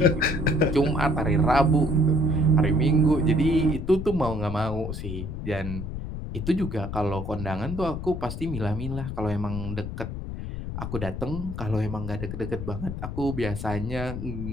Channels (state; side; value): noise; left; rumble, 6 dB below the sound